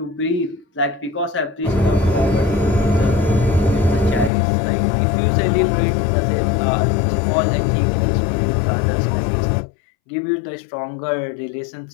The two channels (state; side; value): drops out; right; at 4.3 s